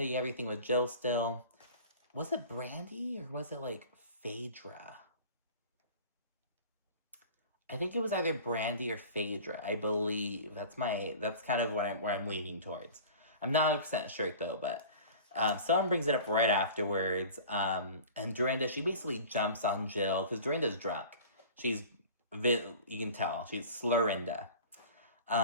you have everything with Jill still. Was it Brandi, or was it, like, Phaedra? I think it was either Brandi or Phaedra, I believe. That's kind of where I'm leaning towards. I'm not 100% sure, though, but someone brings it up right afterwards, and Dorinda, she basically jumps on Jill, because Dorinda's drunk. You can tell, she's Slurrinda.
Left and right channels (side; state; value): both; inverted; correlation -0.40